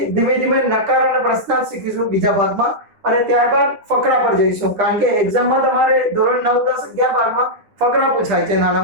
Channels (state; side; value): late; left; 9.9 ms